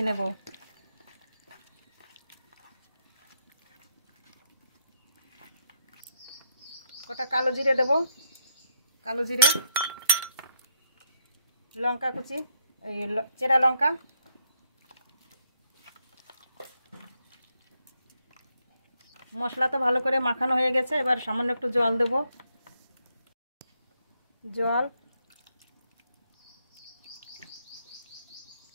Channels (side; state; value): both; inverted; correlation -0.76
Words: নেব। কটা কালো জিরে দেব, কালো জিরে, লঙ্কা কুচি, এই চেরা লঙ্কা, মশলা তো ভালো করে মাখানো হয়ে গেছে। এবার সামান্য একটু জল দেব। জল,